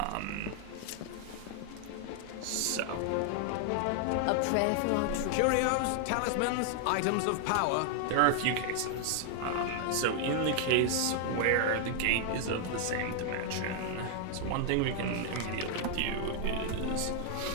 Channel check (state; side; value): different; both; correlation 0.00